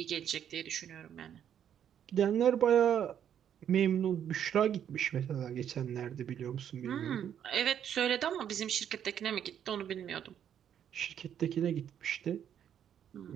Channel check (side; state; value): left; quieter; 9.4 dB